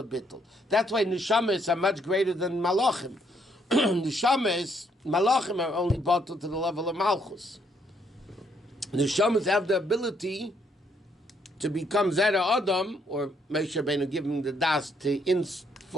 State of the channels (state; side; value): normal; both; correlation 0.71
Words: bittul. That's why neshamas are much greater than malachim. Neshamas, malachim are only bottled to the level of malchus. Neshamas have the ability to become Zera Adam, or Moshe Rabbeinu giving the das to